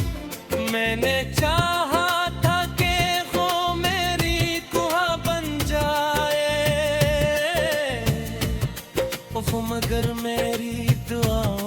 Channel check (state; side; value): identical; both; correlation 1.00